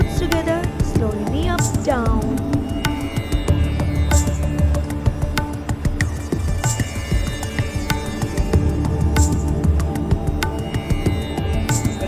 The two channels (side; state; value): both; identical; correlation 1.00